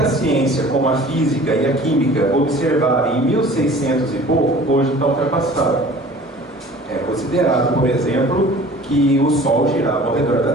ciência, como a física e a química, observaram em 1600 e pouco, hoje está ultrapassado. É considerado, por exemplo, que o Sol girava ao redor da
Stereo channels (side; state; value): both; normal; correlation 0.46